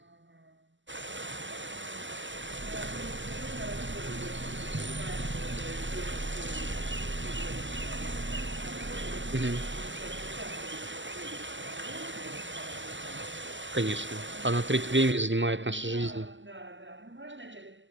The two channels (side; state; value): left; late; 0.54 ms